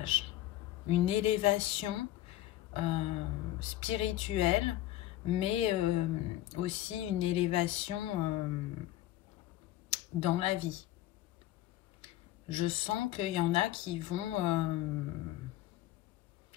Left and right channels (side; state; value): right; quieter; 14.6 dB